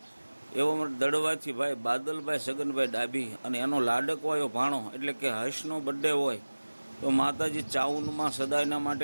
એવો મને દડવાથી ભાઈ બાદલભાઈ સગનભાઈ ડાભી અને એનો લાડકવાયો ભાણો એટલે કે હર્ષનો બર્થડે હોય તો માતાજી ચાઉનમાં સદાયના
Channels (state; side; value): inverted; both; correlation -1.00